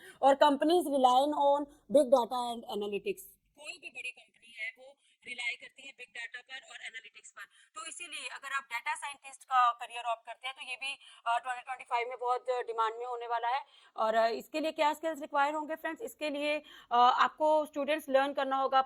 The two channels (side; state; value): both; identical; correlation 1.00